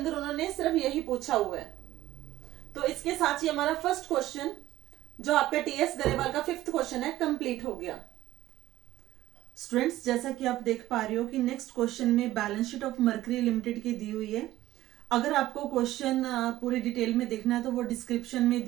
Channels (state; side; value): quieter; left; 15.2 dB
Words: उन्होंने सिर्फ यही पूछा हुआ है। तो इसके साथ ही हमारा फर्स्ट क्वेश्चन, जो आपका टीएस गरेवाल का 5th क्वेश्चन है, कंप्लीट हो गया। स्टूडेंट्स, जैसा कि आप देख पा रहे हो कि नेक्स्ट क्वेश्चन में balance sheet of mercury limited की दी हुई है। अगर आपको क्वेश्चन पूरी डिटेल में देखना है तो वो डिस्क्रिप्शन में